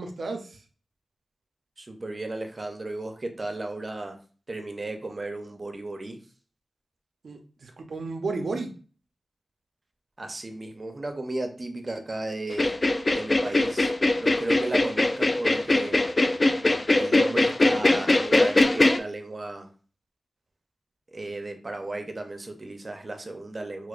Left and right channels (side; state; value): both; normal; correlation 0.97